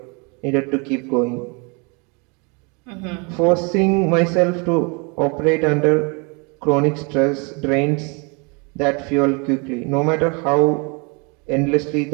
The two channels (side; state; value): left; quieter; 31.8 dB